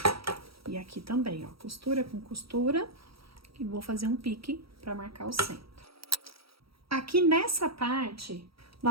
E aqui também, ó, costura com costura. E vou fazer um pique pra marcar o centro. Aqui nessa parte,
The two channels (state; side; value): late; left; 0.75 ms